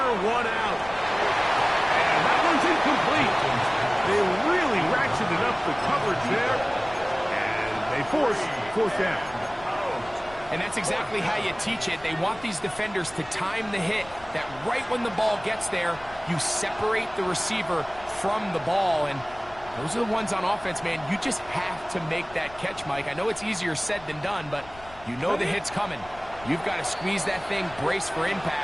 one out. And that one's incomplete. They really ratcheted up the coverage there, and they force 4th down. And that's exactly how you teach it. They want these defenders to time the hit, that right when the ball gets there, you separate the receiver from the ball. And those are the ones on offense, man. You just have to make that catch, Mike. I know it's easier said than done, but you know the hit's coming. You've got to squeeze that thing, brace for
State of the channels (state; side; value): noise; left; rumble, 21 dB below the sound